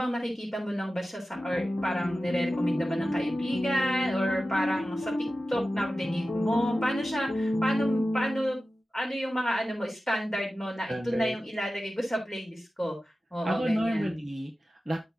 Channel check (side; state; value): both; normal; correlation 0.94